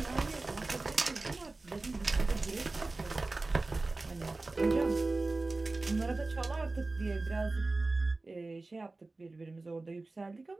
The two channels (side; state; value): left; quieter; 3.3 dB